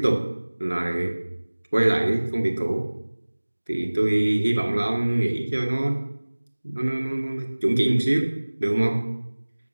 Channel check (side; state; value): both; inverted; correlation -1.00